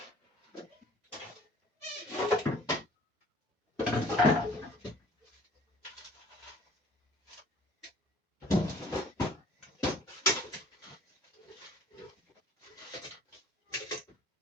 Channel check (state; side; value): normal; both; correlation 0.52